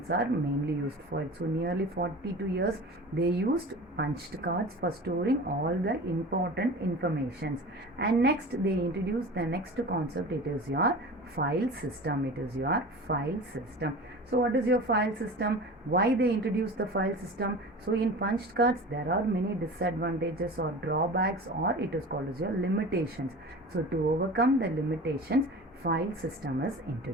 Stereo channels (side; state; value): both; normal; correlation 0.36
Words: are mainly used for it. So nearly 42 years they used punched cards for storing all the important informations. And next they introduced the next concept, it is your file system. It is your file system. So what is your file system? Why they introduced the file system? So in punched cards there are many disadvantages or drawbacks, or it is called as your limitations. So to overcome the limitations, file system is